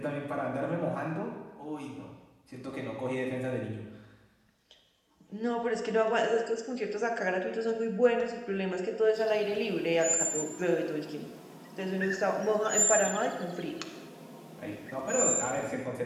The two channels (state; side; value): identical; both; correlation 1.00